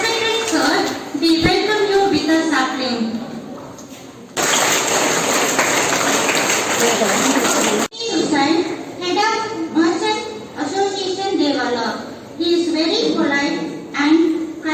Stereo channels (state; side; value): identical; both; correlation 1.00